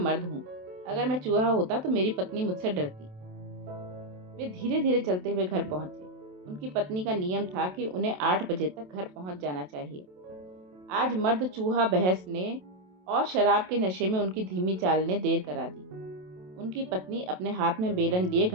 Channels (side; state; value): left; late; 27 ms